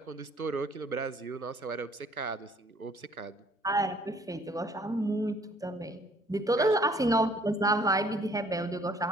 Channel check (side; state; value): both; normal; correlation 0.59